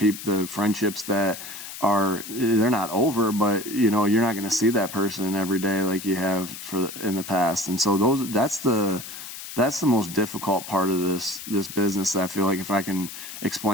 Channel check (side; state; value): left; noise; hiss, 11 dB below the sound